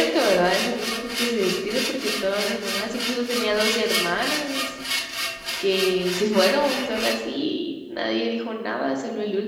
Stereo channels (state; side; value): identical; both; correlation 1.00